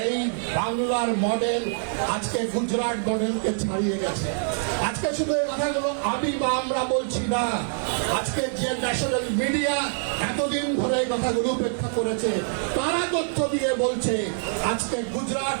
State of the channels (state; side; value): silent; left; digital silence